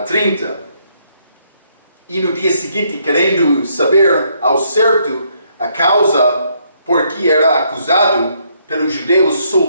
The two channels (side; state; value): both; inverted; correlation -0.71